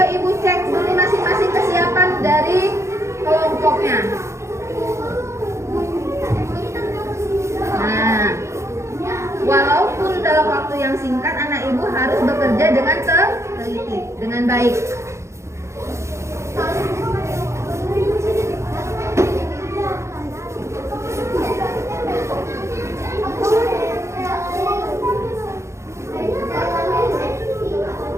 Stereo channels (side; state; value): left; late; 0.14 ms